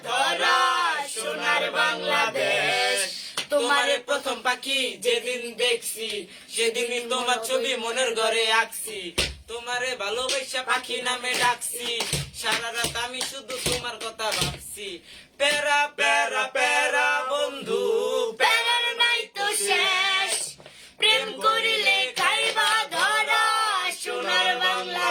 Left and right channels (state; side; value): identical; both; correlation 1.00